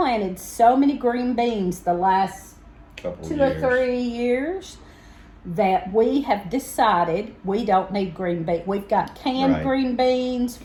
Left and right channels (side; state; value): both; identical; correlation 1.00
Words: so many green beans the last Couple 2 years. or 3 years that we have decided we don't need green beans. We've got canned Right. green beans,